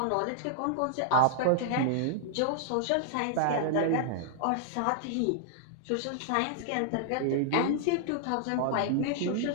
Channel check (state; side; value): different; both; correlation -0.01